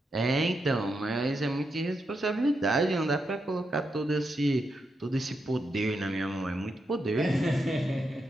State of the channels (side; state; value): both; normal; correlation 0.84